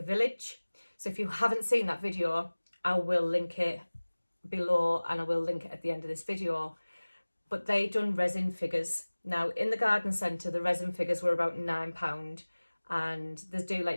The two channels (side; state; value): both; inverted; correlation -1.00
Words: village. So if you haven't seen that video, I will link it below and I will link it at the end of this video. But they done resin figures. Now in the garden centre, the resin figures were about £9, and they do